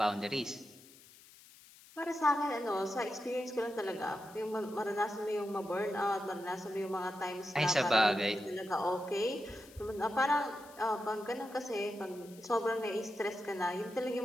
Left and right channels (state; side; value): noise; left; hiss, 22 dB below the sound